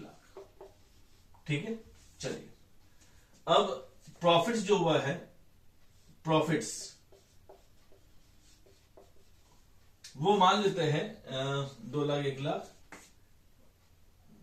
ठीक है। चलिए अब प्रॉफिट्स जो हुआ है, प्रॉफिट्स वो मान लेते हैं 2 लाख 1 लाख,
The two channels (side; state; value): both; identical; correlation 1.00